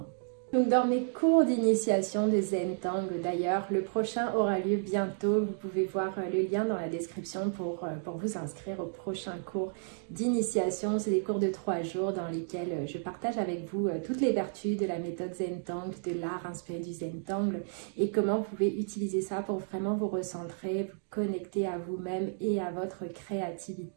Donc dans mes cours d'initiation de Zentangle, d'ailleurs, le prochain aura lieu bientôt. Vous pouvez voir le lien dans la description pour vous inscrire au prochain cours d'initiation. C'est des cours de 3 jours dans lesquels je partage avec vous toutes les vertus de la méthode Zentangle, de l'art inspiré du Zentangle et comment vous pouvez utiliser ça pour vraiment vous recentrer, vous connecter à vous-même et à votre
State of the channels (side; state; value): left; silent; digital silence